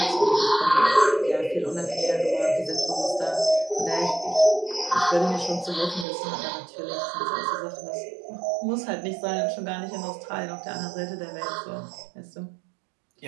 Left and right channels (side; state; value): left; drops out; at 6.1 s